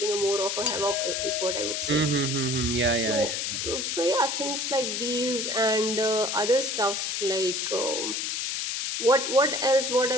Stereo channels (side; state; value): left; noise; hiss, 1 dB below the sound